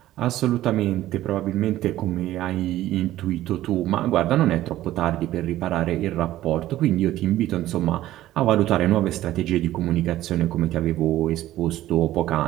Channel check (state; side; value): quieter; left; 14.4 dB